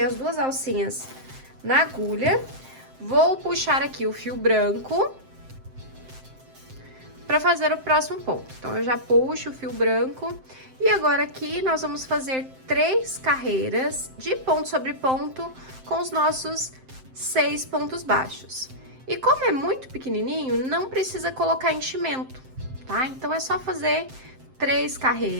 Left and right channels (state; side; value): late; left; 7.7 ms